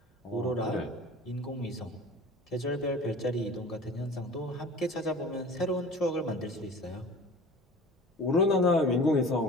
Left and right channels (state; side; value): normal; both; correlation 0.41